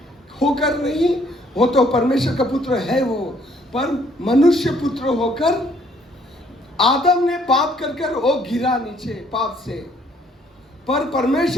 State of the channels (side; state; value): both; normal; correlation 0.64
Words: होकर नहीं, वो तो परमेश्वर का पुत्र है वो, पर मनुष्य पुत्र होकर आदम ने पाप कर वो गिरा नीचे पाप से, पर